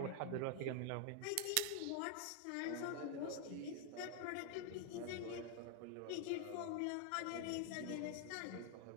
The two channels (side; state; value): both; different; correlation 0.00